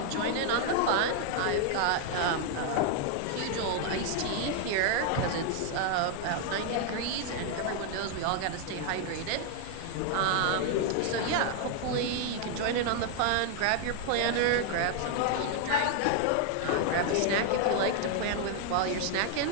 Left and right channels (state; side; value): different; both; correlation 0.00